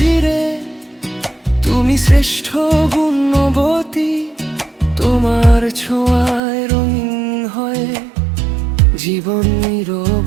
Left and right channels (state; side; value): drops out; left; at 6.4 s